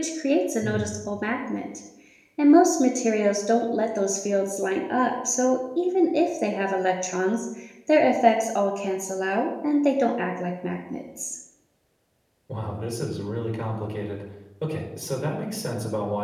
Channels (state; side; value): identical; both; correlation 1.00